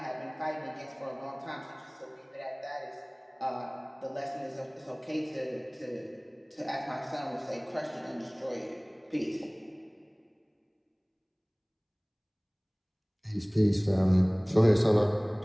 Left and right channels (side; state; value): both; identical; correlation 1.00